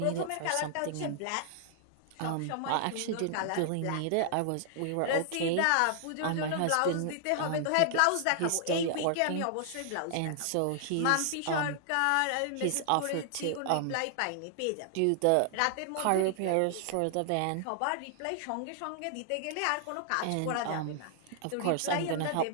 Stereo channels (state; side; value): different; both; correlation -0.01